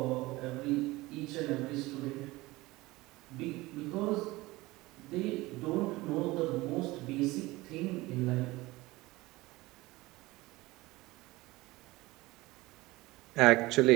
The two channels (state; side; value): quieter; left; 20.2 dB